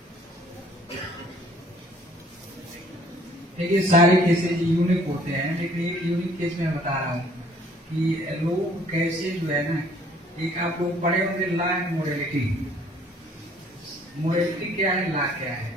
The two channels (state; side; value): normal; both; correlation 0.58